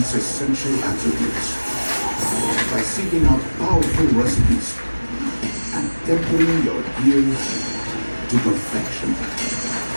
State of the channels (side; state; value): both; inverted; correlation -1.00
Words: essential attributes by seeking out powerful recipes and tempering your gear to perfection.